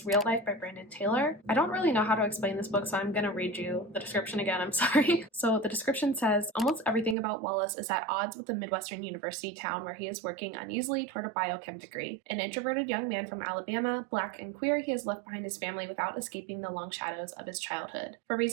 Real Life by Brandon Taylor. I don't really know how to explain this book, so I'm going to read you the description again. I'm sorry. So the description says, almost everything about Wallace is at odds with the Midwestern university town where he is working uneasily toward a biochem degree. An introverted young man from Alabama, black and queer, he has left behind his family without escaping the long shadows of his childhood. For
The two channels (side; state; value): left; drops out; at 7.2 s